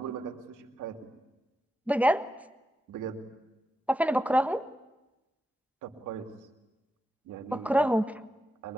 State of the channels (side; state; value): both; normal; correlation 0.88